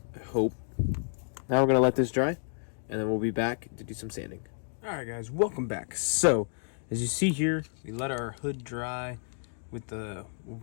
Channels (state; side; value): silent; right; digital silence